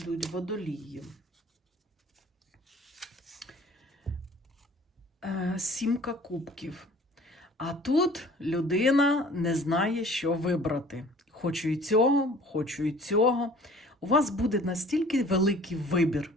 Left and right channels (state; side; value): normal; both; correlation 0.49